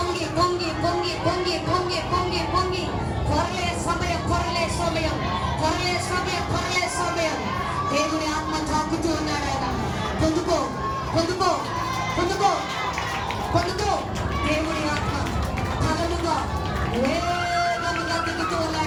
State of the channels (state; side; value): identical; both; correlation 1.00